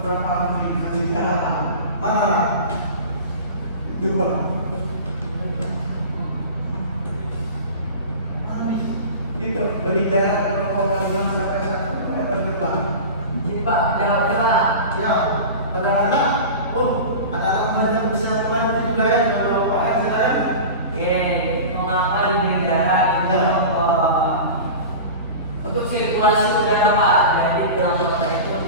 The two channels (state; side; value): inverted; both; correlation -0.33